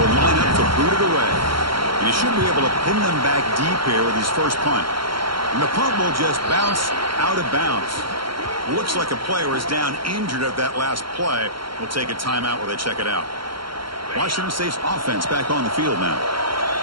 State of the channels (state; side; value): late; left; 0.73 ms